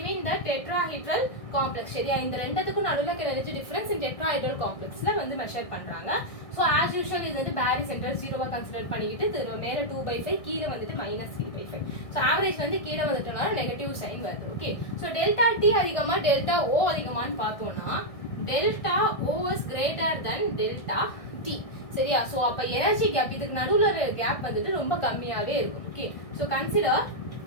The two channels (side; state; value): right; late; 1.6 ms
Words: the tetrahedral complex. சரியா? இந்த ரெண்டுத்துக்கும் நடுவுல energy difference in tetrahedral complexல வந்து மெஷர் பண்றாங்க. So as usual இது வந்து பேரி சென்டர் 0வா கன்சிடர் பண்ணிக்கிட்டு மேல 2/5 கீழே வந்துட்டு -3/5. So average வந்து கீழே வந்துட்டனால நெகட்டிவ் சைன் வருது. ஓகே, so delta T அதிகமா delta O அதிகமான்னு பார்த்தோம்னா delta O is greater than delta T. சரியா? சோ அப்ப எனர்ஜி கேப் இதுக்கு நடுவுல ஒரு கேப் வந்துட்டு ரொம்ப கம்மியாவே இருக்கும். Okay, so consider